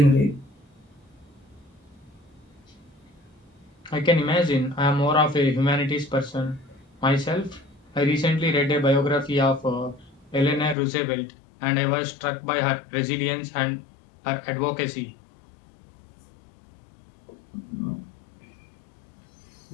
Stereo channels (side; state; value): right; drops out; at 10.8 s